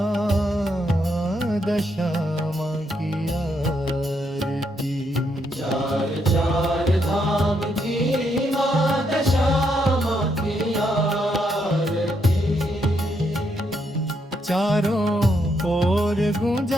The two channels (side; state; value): both; normal; correlation 0.77